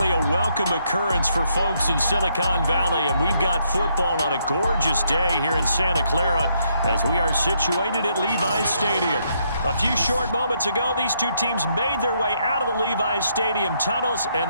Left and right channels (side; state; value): both; inverted; correlation -0.74